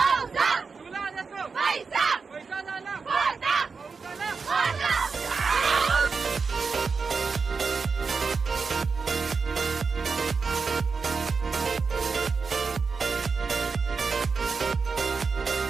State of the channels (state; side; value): quieter; left; 4.9 dB